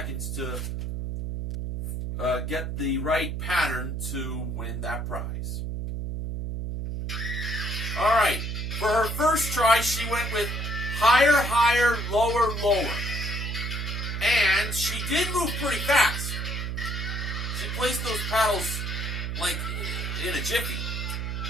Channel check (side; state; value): right; noise; hum, 3 dB below the sound